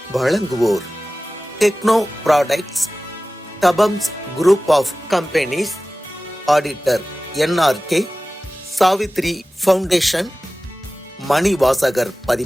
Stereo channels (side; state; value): both; normal; correlation 0.96